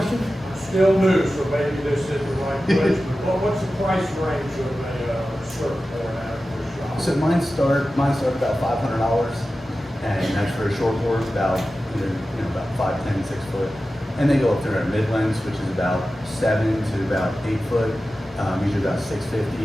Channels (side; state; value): both; normal; correlation 0.94